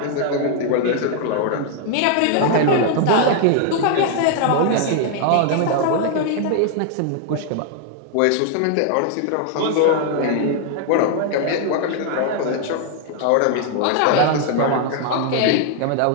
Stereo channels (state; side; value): different; both; correlation 0.00